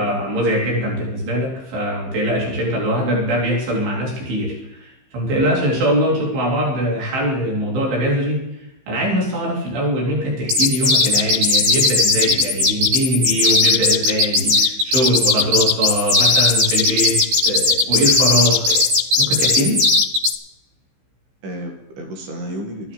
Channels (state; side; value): late; left; 15 ms